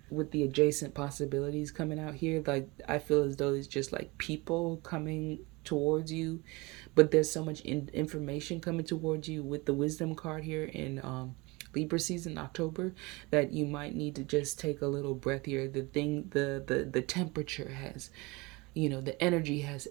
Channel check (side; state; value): left; quieter; 24.5 dB